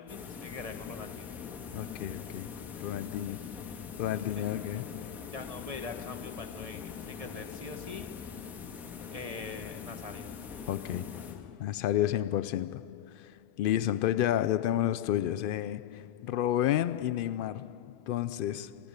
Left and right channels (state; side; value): quieter; right; 10.9 dB